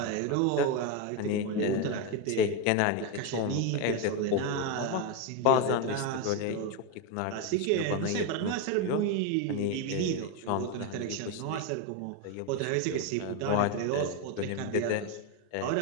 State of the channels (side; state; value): both; different; correlation 0.02